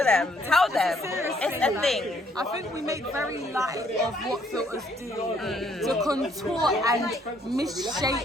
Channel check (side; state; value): both; normal; correlation 0.67